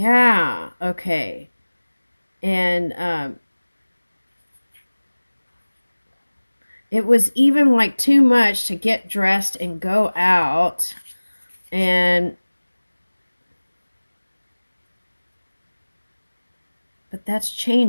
okay. And it was even like too much to get dressed and go out. And but that's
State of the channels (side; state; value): both; inverted; correlation -1.00